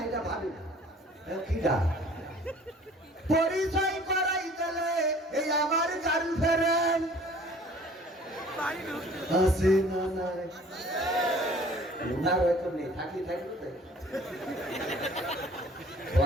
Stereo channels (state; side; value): normal; both; correlation 0.51